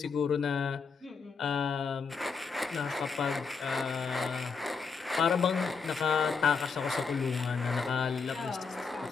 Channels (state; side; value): quieter; right; 5.3 dB